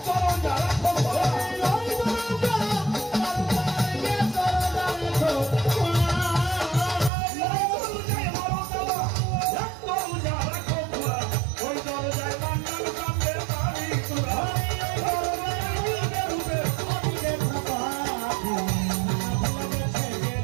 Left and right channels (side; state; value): left; drops out; at 7.1 s